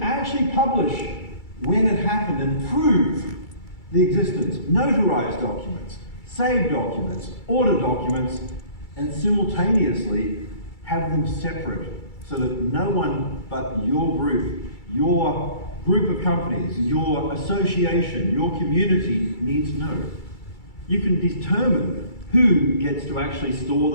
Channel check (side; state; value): right; late; 2.3 ms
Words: actually publish when it happened and prove the existence. Notarized documents, saved documents, order documents, and simultaneously have them separate so that no one but your group of companies, your association, your community needs to know. You can determine who gets to actually